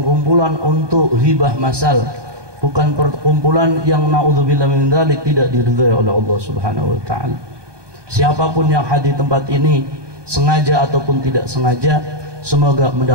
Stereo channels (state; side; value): late; left; 1.2 ms